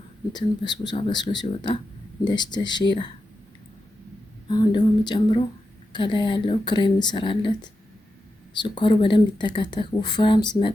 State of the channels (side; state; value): both; normal; correlation 0.89